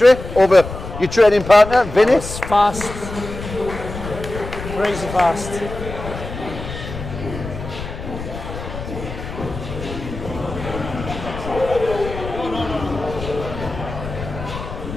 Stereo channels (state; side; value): noise; left; rumble, 9 dB below the sound